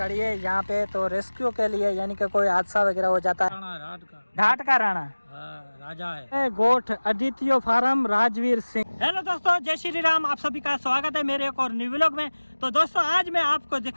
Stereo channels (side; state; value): both; inverted; correlation -1.00